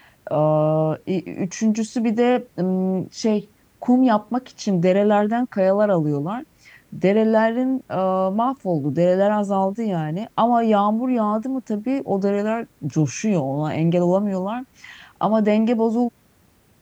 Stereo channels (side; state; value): both; identical; correlation 1.00